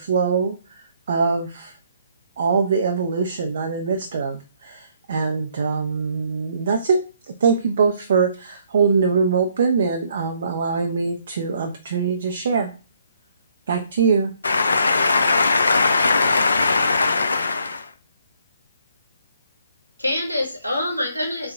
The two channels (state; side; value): inverted; both; correlation -0.69